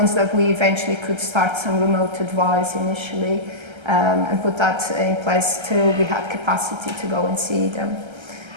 that we eventually could start some remote advice initially, and put that in place till we had capacity to go and see them.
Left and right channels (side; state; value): left; late; 1.3 ms